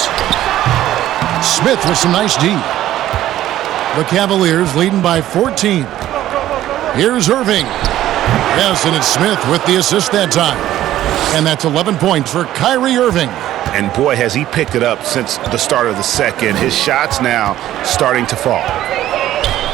Smith with some nice D. The Cavaliers leading by 14. Here's Irving. Yes, and it's Smith with the assist that time. And that's 11 points for Kyrie Irving. And boy, has he picked it up since the start of the second. His shots now starting to fall.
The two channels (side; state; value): left; quieter; 13.4 dB